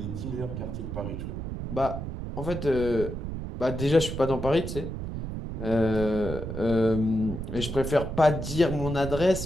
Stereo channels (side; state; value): right; noise; rumble, 6 dB below the sound